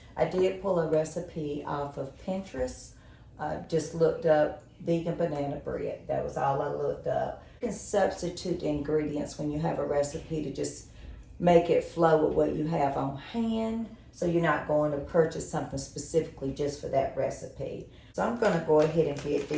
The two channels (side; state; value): both; identical; correlation 1.00